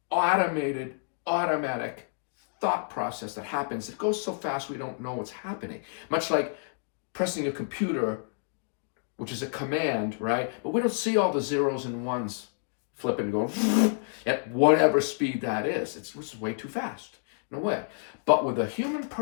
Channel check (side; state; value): right; silent; digital silence